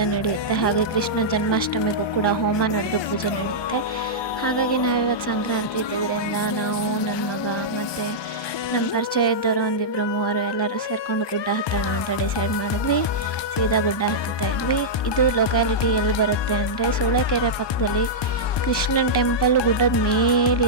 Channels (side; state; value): right; late; 1.2 ms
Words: ನಡೆಯುತ್ತೆ, ಹಾಗೆ ಕೃಷ್ಣ ಜನ್ಮಾಷ್ಟಮಿಗೂ ಕೂಡ ಹೋಮ ನಡೆದು ಪೂಜೆ ನಡೆಯುತ್ತೆ. ಹಾಗಾಗಿ ನಾವಿವತ್ತು ಸಂಕ್ರಾಂತಿ ಇದ್ದಿದ್ದರಿಂದ ನಾವು, ನನ್ನ ಮಗ ಮತ್ತು ನಮ್ಮ ಪರಿಚಯ ಇದ್ದವರು ಒಂದಿಬ್ಬರು ಮೂವರು ಎಲ್ಲರೂ ಸೇರಿಕೊಂಡು ಗುಡ್ಡ ಹತ್ತೋಣ ಅಂತ ಡಿಸೈಡ್ ಮಾಡಿದ್ವಿ. ಸೀದಾ ಗುಡ್ಡ ಹತ್ತುತ್ತಾ ಇದ್ವಿ. ಇದು ಲೊಕ್ಯಾಲಿಟಿ ಎಲ್ಲಿ ಬರುತ್ತೆ ಅಂದರೆ ಸೂಳೆಕೆರೆ ಪಕ್ಕದಲ್ಲಿ ಕೃಷ್ಣನ ಟೆಂಪಲ್ ಗುಡ್ಡದ